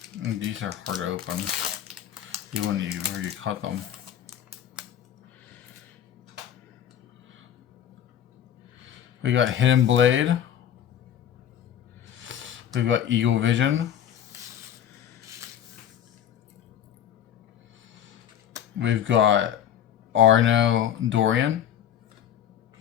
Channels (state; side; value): quieter; right; 9.9 dB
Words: These are hard to open, even when you cut them. We got Hidden Blade. We've got Eagle Vision. We've got Arno Dorian.